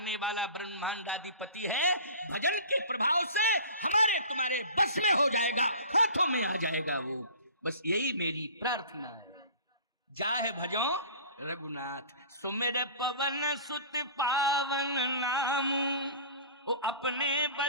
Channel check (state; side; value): inverted; both; correlation -0.42